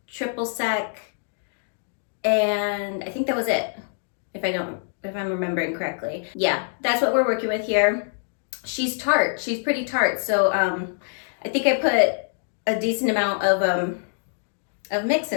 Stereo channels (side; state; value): right; silent; digital silence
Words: triple sec, and I think that was it, if I'm remembering correctly. Yeah, that's what we're working with here. She's tart. She's pretty tart. So I think I put a decent amount of mix